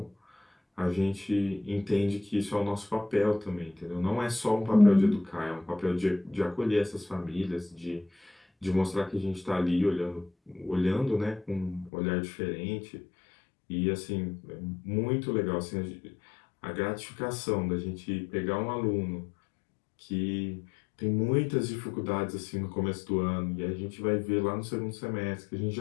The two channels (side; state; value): right; drops out; at 11.9 s